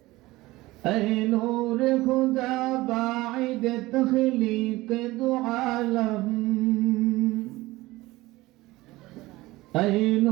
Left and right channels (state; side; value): quieter; left; 19.3 dB